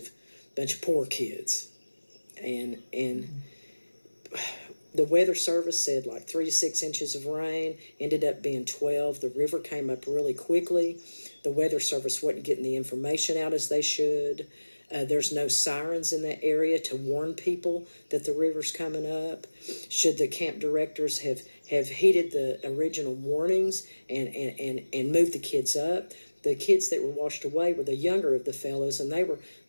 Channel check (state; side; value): inverted; both; correlation -1.00